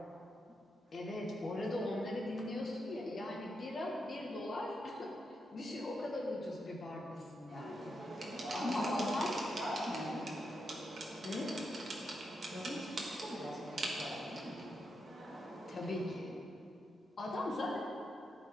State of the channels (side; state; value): both; normal; correlation 0.84